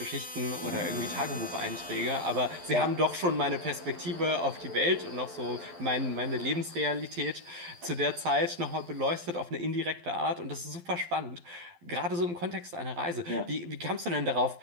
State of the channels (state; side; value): late; left; 12 ms